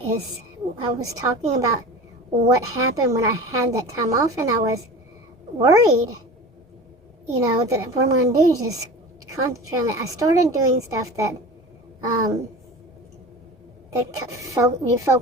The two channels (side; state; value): both; normal; correlation 0.34